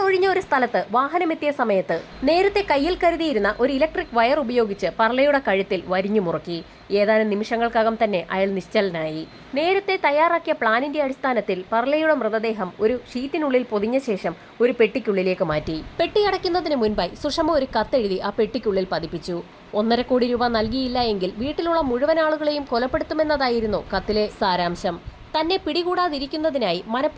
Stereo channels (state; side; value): identical; both; correlation 1.00